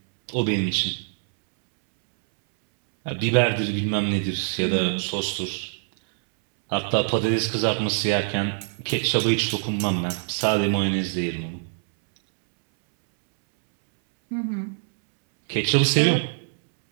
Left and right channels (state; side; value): silent; left; 63 dB below the other